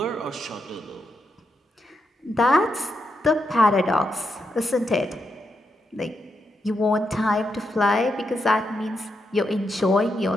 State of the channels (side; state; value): both; normal; correlation 0.83